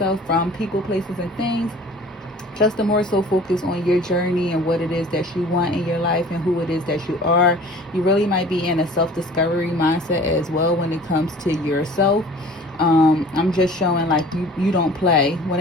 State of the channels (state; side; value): normal; both; correlation 0.46